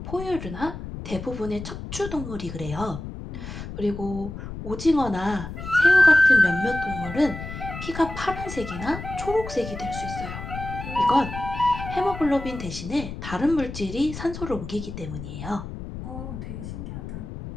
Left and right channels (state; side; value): noise; left; rumble, 9 dB below the sound